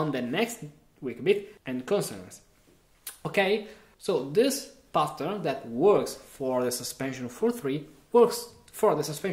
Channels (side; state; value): both; identical; correlation 1.00